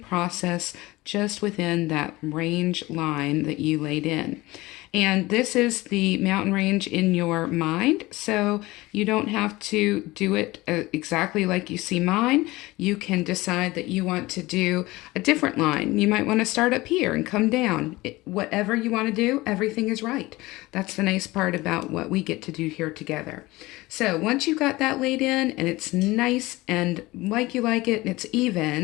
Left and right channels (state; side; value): quieter; right; 20.2 dB